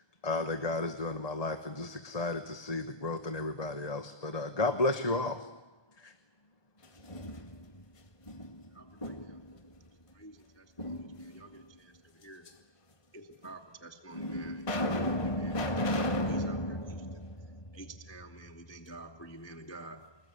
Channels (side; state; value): right; late; 1.2 ms